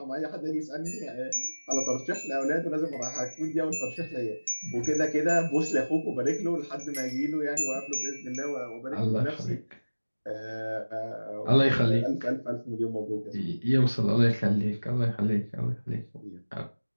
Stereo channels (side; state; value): both; inverted; correlation -1.00